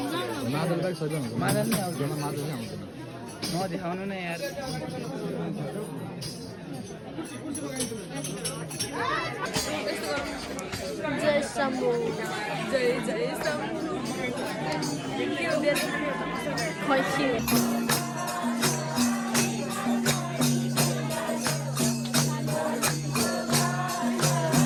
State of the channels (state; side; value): identical; both; correlation 1.00